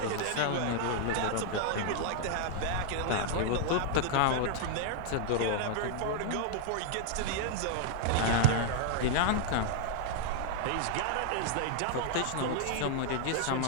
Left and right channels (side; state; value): both; different; correlation -0.01